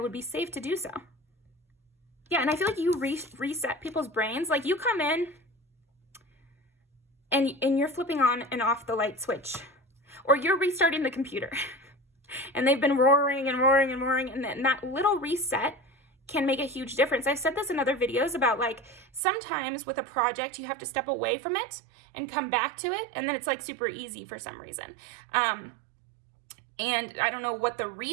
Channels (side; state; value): left; drops out; at 19.2 s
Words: would be safe to do so. Yeah, and I feel like you reset people's brains. Like, you come in and you're flipping on and off the light switch, or you're restarting the computer and they've been roaring and roaring and roaring, and that little reset can make a huge difference. I've said this in other videos about, like, sometimes with a project you have to step away from it and come back to it, and then it's like super easy for some reason. And I don't know what the